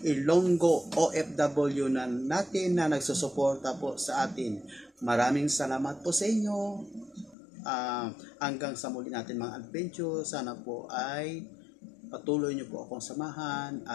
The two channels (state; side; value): drops out; right; at 7.4 s